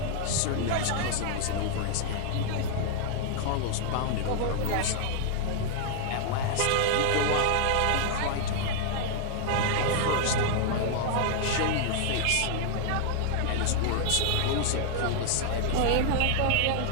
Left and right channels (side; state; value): both; different; correlation 0.00